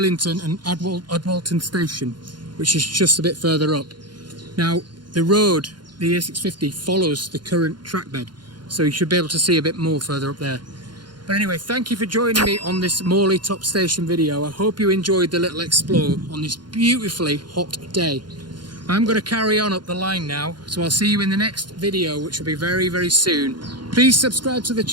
and Adwalton Station, which is just a bit further up. Now the road, the A650, follows the current track bed, so you should be able to see a bit more further up there. But anyway, thank you for joining me on this Morley Top Station video. I hope you enjoyed the little explore on this beautifully hot day. I'm going to carry on up the line now, so I'll see you in the next video, which will be very, very soon. Please subscribe to the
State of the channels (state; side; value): late; left; 0.71 ms